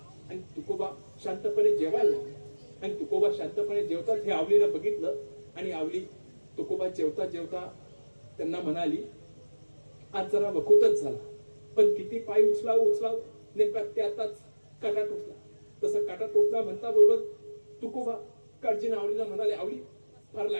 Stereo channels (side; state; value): both; inverted; correlation -1.00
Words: आणि तुकोबा शांतपणे जेवायला लागले. आणि तुकोबा शांतपणे जेवतात हे आवलीनं बघितलं. आणि आवली तुकोबा जेवता जेवता त्यांना म्हणाली, आज जरा वखूतच झाला, पण किती पाय उचलाव नेमका त्यातच काटा टोचला. तसं काटा टोचला म्हणता बरोबर तुकोबा काळजीनं आवलीला म्हणाले, आवली, फार